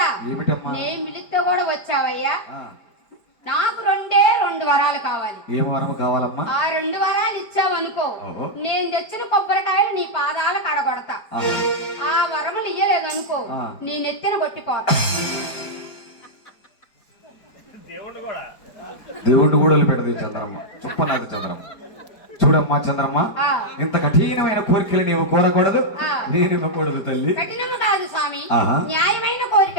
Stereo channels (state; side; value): late; right; 5.1 ms